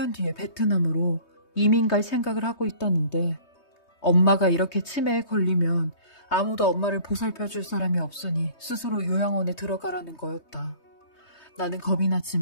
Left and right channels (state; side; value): late; right; 3.2 ms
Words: 뒤에 베트남으로 이민 갈 생각을 하고 있다는데 엄마가 이렇게 치매에 걸리면 아무도 엄마를 보살펴줄 사람이 없으니 스스로 요양원에 들어가라는 거였다. 나는 겁이